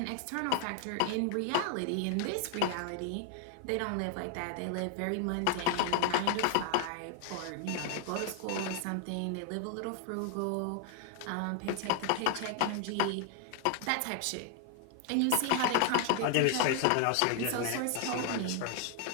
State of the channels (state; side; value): different; both; correlation 0.00